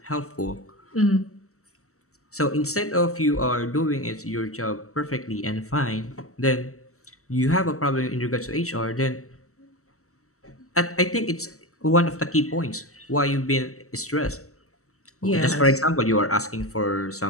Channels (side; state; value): right; late; 0.64 ms